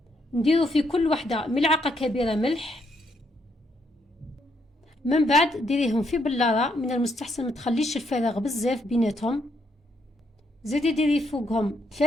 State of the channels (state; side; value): normal; both; correlation 0.75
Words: نديرو في كل وحدة ملعقة كبيرة ملح. من بعد ديريهم في بلارة، من المستحسن ما تخليش الفراغ بزاف بيناتهم. زيدي ديري فوقهم